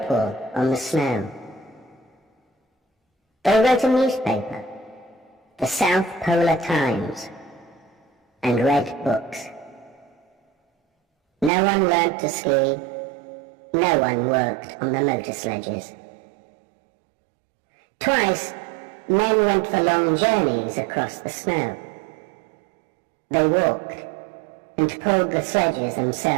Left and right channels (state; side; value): drops out; left; at 11.5 s